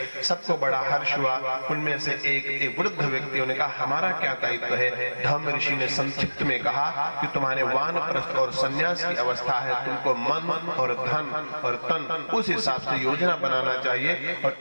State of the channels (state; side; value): inverted; both; correlation -1.00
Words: सबको बड़ा हर्ष हुआ। उनमें से एक वृद्ध व्यक्तियों ने कहा, हमारा क्या दायित्व है? धम्म ऋषि ने संक्षिप्त में कहा कि तुम्हारे वानप्रस्थ और संन्यास की अवस्था है, तुमको मन और धन और तन उस हिसाब से योजना बनाना चाहिए। और